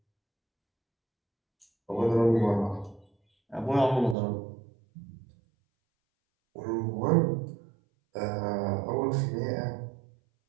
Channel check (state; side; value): drops out; left; at 4.2 s